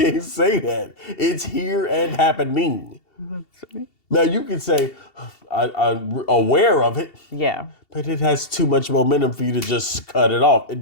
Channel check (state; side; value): late; right; 2.7 ms